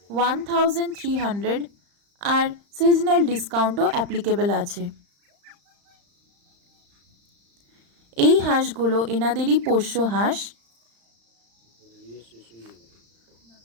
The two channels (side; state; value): left; late; 35 ms